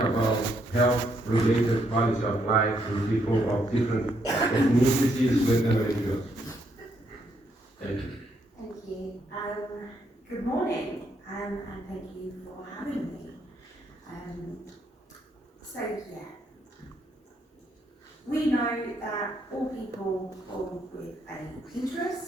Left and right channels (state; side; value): normal; both; correlation 0.74